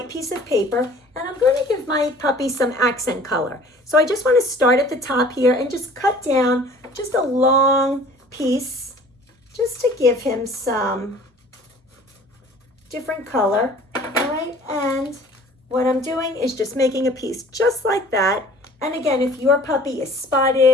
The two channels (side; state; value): both; normal; correlation 0.49